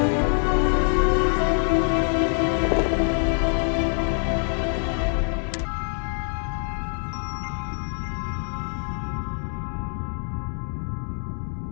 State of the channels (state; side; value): silent; right; 56 dB below the other